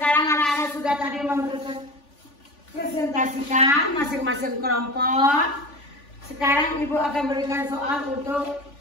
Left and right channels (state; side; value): late; right; 3.5 ms